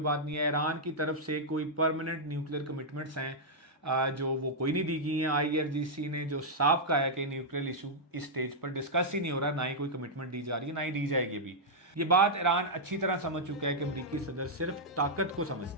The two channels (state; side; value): normal; both; correlation -0.07